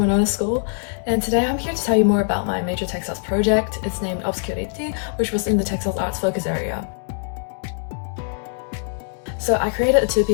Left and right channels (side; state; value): right; silent; 63 dB below the other